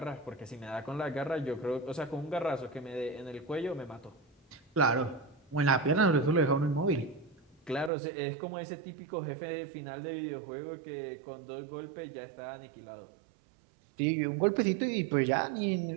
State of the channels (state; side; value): drops out; left; at 7.9 s